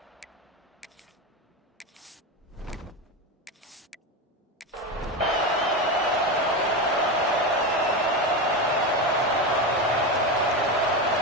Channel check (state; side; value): normal; both; correlation 0.17